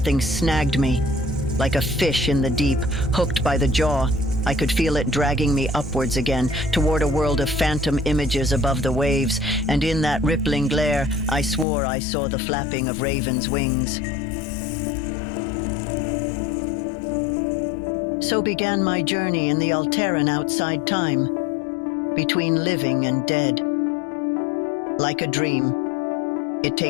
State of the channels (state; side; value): drops out; right; at 11.7 s